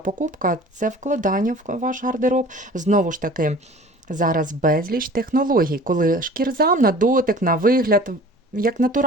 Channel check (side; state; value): both; normal; correlation 0.45